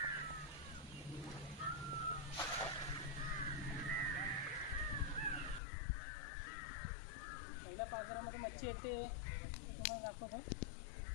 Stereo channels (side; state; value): right; drops out; at 5.6 s